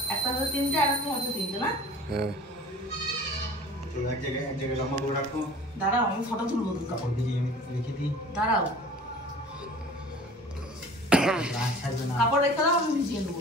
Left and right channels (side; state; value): both; normal; correlation 0.44